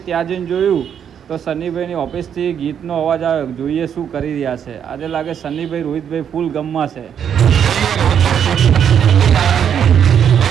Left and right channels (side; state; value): left; quieter; 8.4 dB